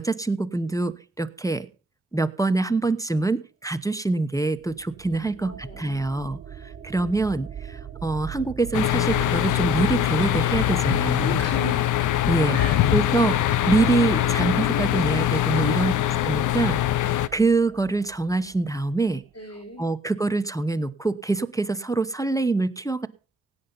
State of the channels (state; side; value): normal; both; correlation 0.53